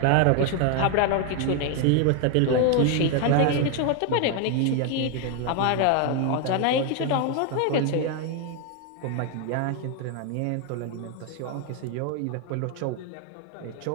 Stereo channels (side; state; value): both; different; correlation 0.01